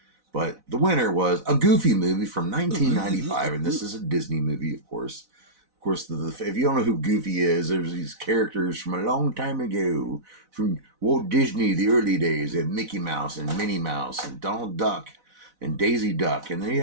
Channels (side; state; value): left; late; 4.0 ms